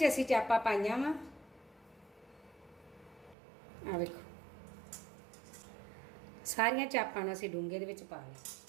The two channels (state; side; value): drops out; left; at 3.4 s